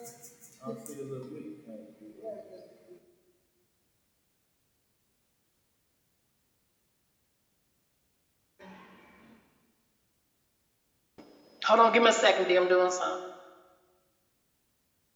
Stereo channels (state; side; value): identical; both; correlation 1.00